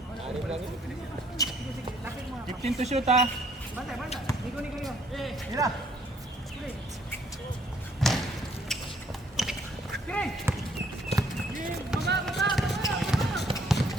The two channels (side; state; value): both; normal; correlation 0.64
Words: 15 to shoot ha.